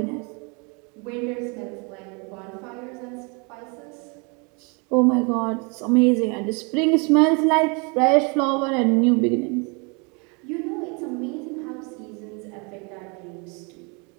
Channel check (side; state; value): left; quieter; 32.2 dB